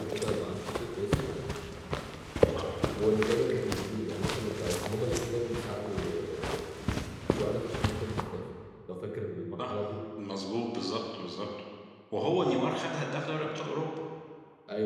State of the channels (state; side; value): identical; both; correlation 1.00